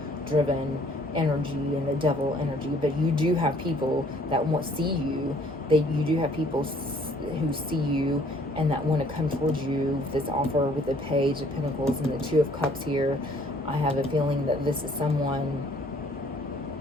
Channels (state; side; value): normal; both; correlation 0.60